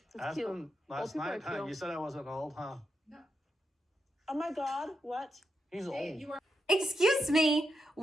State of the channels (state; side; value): normal; both; correlation 0.84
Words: Asked him last night, huh? You said I wasn't old, huh? Oh my God, what? He's old. Excuse me,